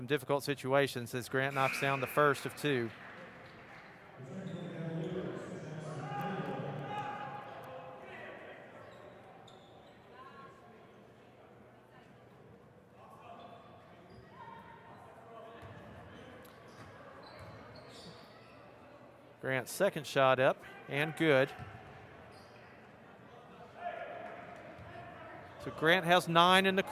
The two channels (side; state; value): both; identical; correlation 1.00